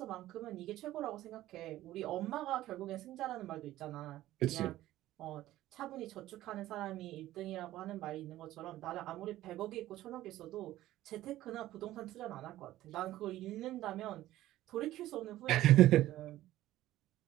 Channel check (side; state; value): left; quieter; 14.9 dB